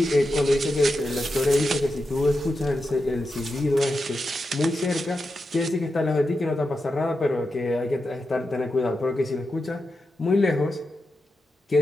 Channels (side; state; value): both; normal; correlation 0.89